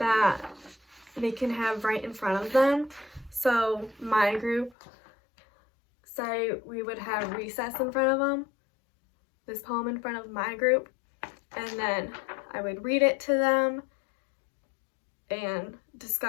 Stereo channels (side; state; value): right; drops out; at 4.8 s